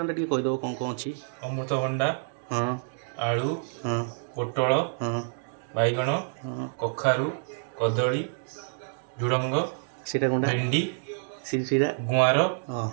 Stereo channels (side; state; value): left; silent; digital silence